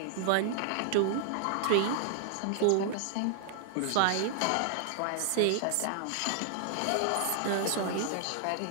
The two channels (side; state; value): both; different; correlation 0.00